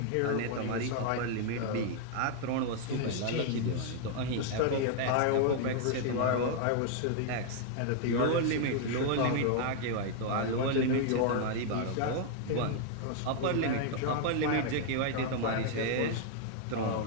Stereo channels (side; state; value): both; different; correlation 0.00